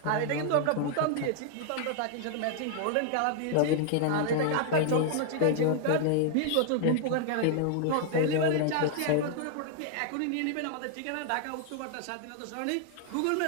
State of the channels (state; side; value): different; both; correlation 0.00